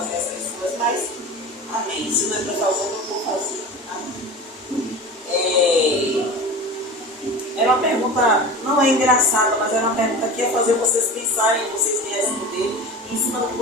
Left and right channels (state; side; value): normal; both; correlation 0.33